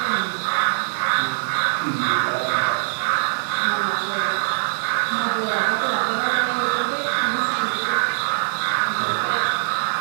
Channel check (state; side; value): silent; left; digital silence